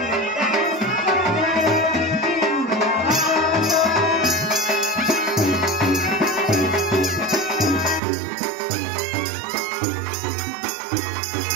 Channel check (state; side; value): drops out; left; at 8.0 s